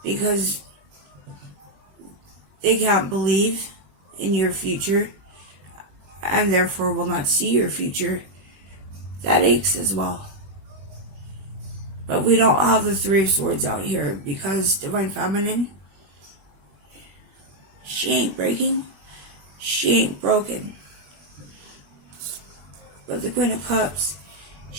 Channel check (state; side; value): late; left; 21 ms